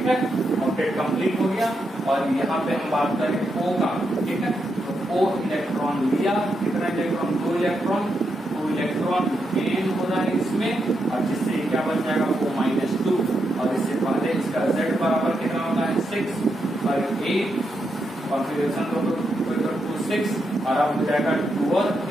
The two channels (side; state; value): both; normal; correlation 0.83